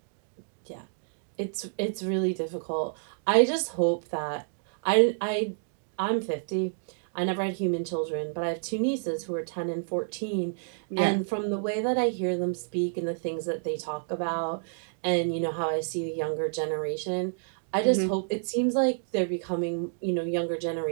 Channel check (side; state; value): left; silent; digital silence